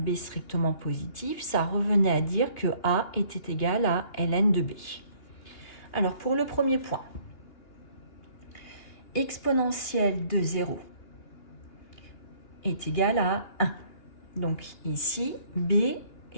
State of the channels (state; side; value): late; right; 2.8 ms